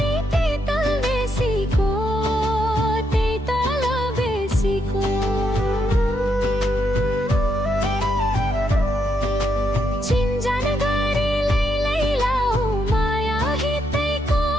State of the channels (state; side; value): normal; both; correlation 0.78